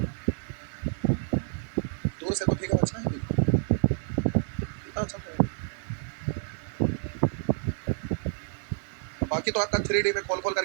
दूर से तो फिगर अच्छा है, कितना अच्छा तो है। बाकी तो आपका 3D में खोल खोल कर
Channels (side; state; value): left; silent; 59 dB below the other